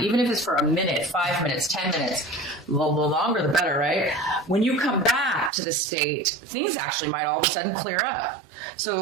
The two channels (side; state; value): left; drops out; at 5.5 s